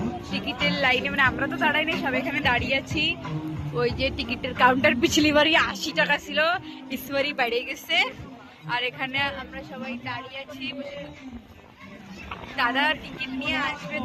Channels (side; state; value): both; identical; correlation 1.00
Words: টিকিটের লাইনে, আমরা তো দাঁড়াই না, সবাই এখানে দাঁড়িয়ে আছি। ওই যে টিকিটের কাউন্টার পিছলি বাড়ি 80 টাকা ছিল, ইসবারই বেড়ে গেছে। আর এখানে আমরা সবাই দাঁড়িয়ে আছি, দাদা টিকিট নিয়ে আসবে,